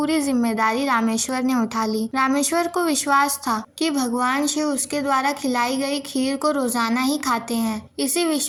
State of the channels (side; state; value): both; identical; correlation 1.00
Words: जिम्मेदारी रामेश्वर ने उठा ली। रामेश्वर को विश्वास था कि भगवान शिव उसके द्वारा खिलाई गई खीर को रोजाना ही खाते हैं। इसी